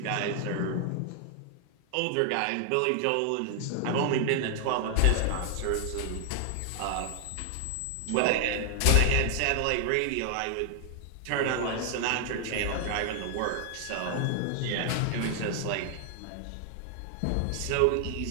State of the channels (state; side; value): different; both; correlation 0.00